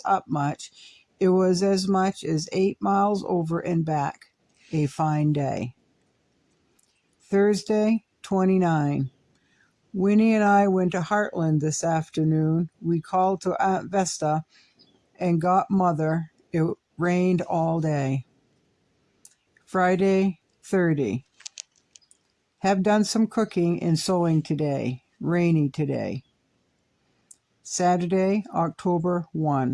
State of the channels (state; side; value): identical; both; correlation 1.00